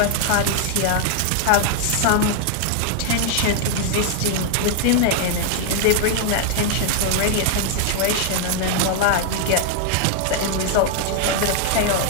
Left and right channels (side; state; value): both; different; correlation 0.00